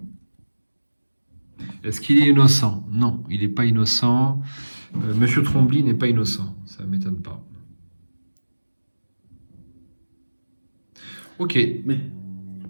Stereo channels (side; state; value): both; inverted; correlation -1.00